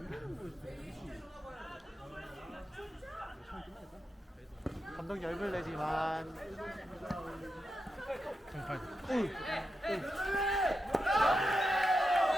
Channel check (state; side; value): normal; both; correlation 0.88